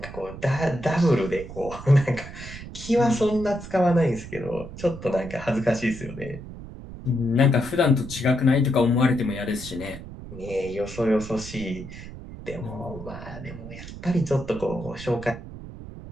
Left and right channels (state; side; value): noise; right; rumble, 12 dB below the sound